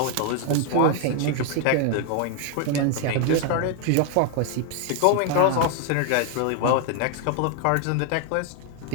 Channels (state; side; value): different; both; correlation 0.00